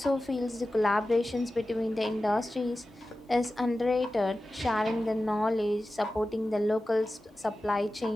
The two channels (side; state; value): both; normal; correlation 0.94